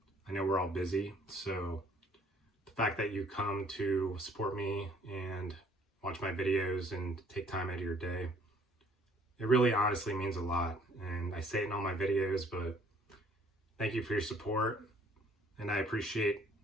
I know we're all busy, so the fact that you come to support me and watch my videos and take time out of your day, it really honestly means a lot. And I say it in all my videos, but thank you for your support, and I appreciate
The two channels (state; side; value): normal; both; correlation 0.60